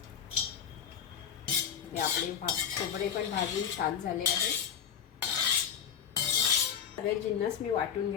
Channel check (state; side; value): quieter; right; 8.3 dB